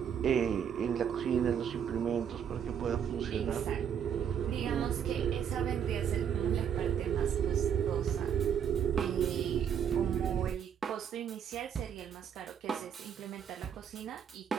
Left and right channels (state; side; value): quieter; left; 8.4 dB